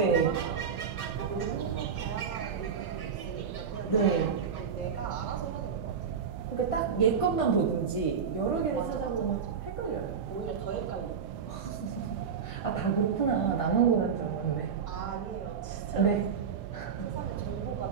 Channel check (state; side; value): quieter; left; 6.6 dB